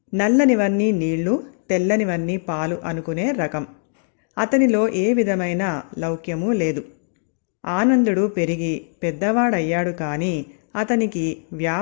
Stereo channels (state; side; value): silent; right; digital silence